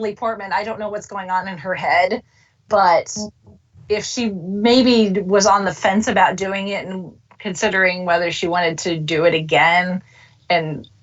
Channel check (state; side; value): identical; both; correlation 1.00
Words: Portman. I don't know what's going on in her head, but if she maybe was on the fence about doing it and considering whether she wanted to do it again and